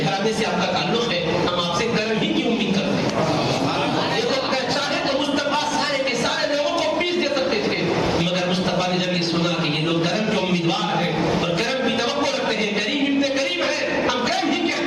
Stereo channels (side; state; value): both; identical; correlation 1.00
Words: گھرانے سے آپ کا تعلق ہے, ہم آپ سے کرم ہی کی امید کرتے ہیں. یہ تو چاہے تو مصطفیٰ سارے کے سارے لوگوں کو پیس دے سکتے تھے, مگر مصطفیٰ نے جب یہ سنا کہ یہ لوگ کرم کے امیدوار ہیں اور کرم کی توقع رکھتے ہیں, کریم ابن کریم ہے, ہم کرم ہی کے